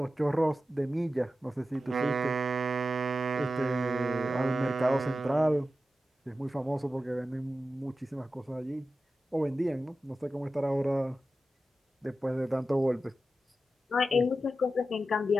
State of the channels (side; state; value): both; normal; correlation 0.92